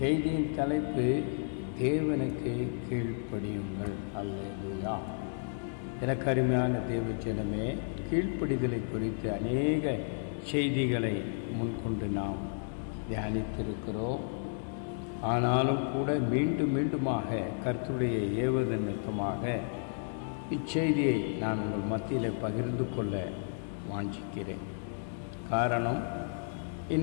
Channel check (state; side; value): silent; right; digital silence